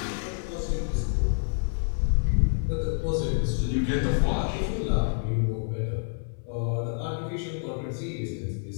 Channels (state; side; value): silent; right; 60 dB below the other